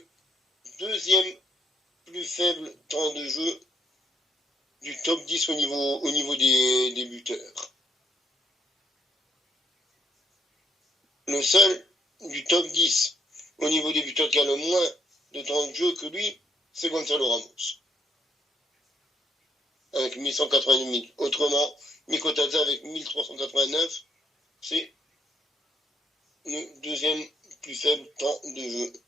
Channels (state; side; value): normal; both; correlation 0.70